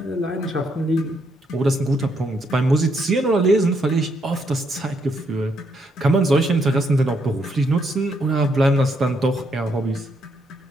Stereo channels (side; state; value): both; normal; correlation 0.75